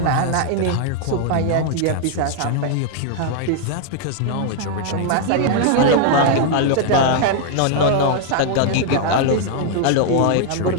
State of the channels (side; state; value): both; different; correlation 0.00